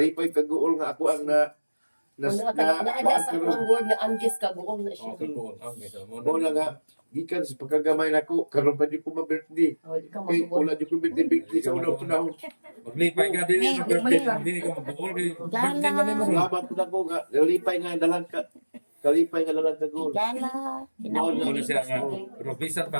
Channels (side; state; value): both; inverted; correlation -1.00